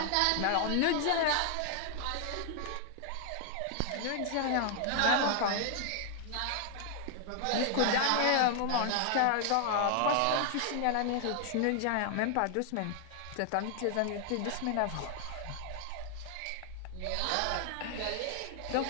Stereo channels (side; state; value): both; different; correlation 0.00